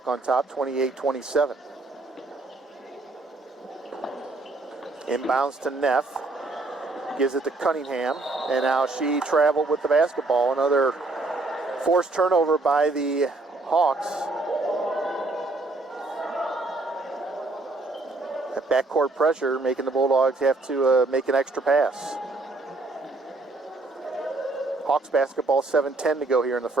on top, 28-27. Inbounds to Neff. Gives it to Cunningham. And now she traveled with the basketball. Another forced turnover by the Hawks. That backcourt pressure making the Bulldogs have to make an extra pass. Hawks basketball, 7:10 to go here in the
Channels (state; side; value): quieter; left; 3.2 dB